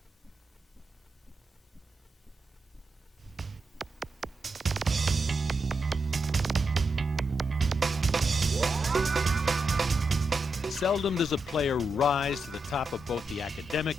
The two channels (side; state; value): both; normal; correlation 0.85